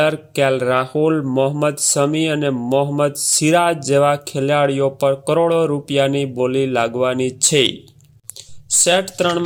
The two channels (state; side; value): identical; both; correlation 1.00